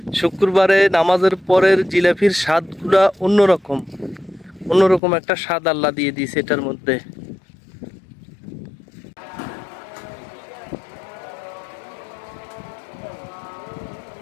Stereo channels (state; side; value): drops out; right; at 5.0 s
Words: শুক্রবারে নামাজের পরের জিলাপির স্বাদগুলা অন্যরকম, অন্যরকম একটা স্বাদ আল্লাহ দিয়ে দিয়েছে এটার মধ্যে।